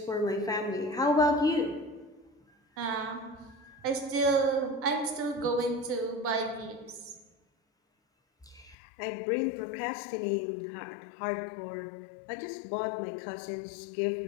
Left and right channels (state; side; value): drops out; right; at 8.8 s